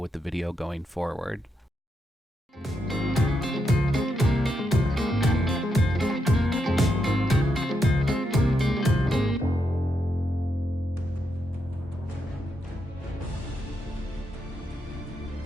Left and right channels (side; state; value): both; normal; correlation 0.82